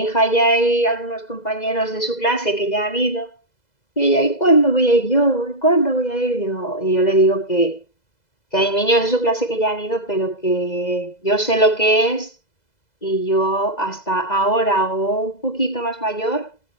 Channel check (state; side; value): late; right; 2.0 ms